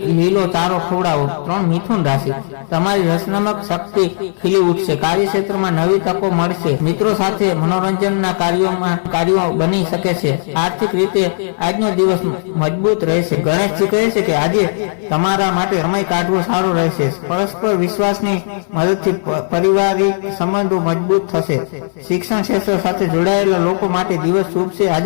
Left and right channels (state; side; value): silent; right; 57 dB below the other